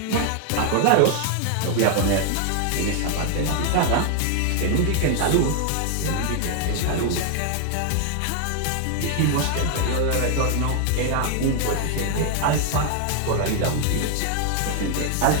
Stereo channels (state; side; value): different; both; correlation 0.00